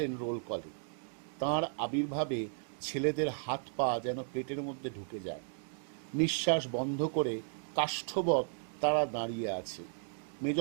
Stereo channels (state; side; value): silent; left; digital silence